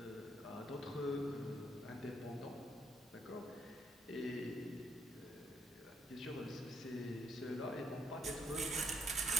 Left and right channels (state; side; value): normal; both; correlation 0.72